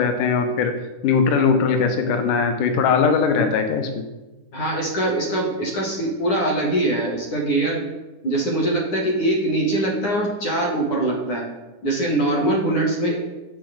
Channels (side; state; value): right; late; 9.9 ms